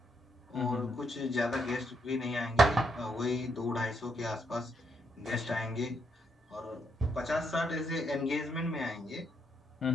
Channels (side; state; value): both; normal; correlation 0.77